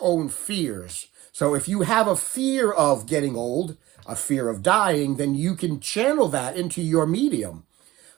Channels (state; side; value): quieter; left; 17.2 dB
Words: own fears. So if you have a fear of getting old, a fear of dying, then you can channel that into your medium.